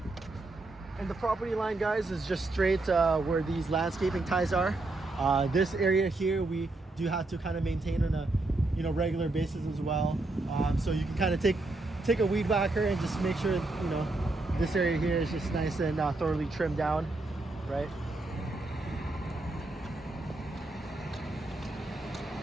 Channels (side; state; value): left; quieter; 3.0 dB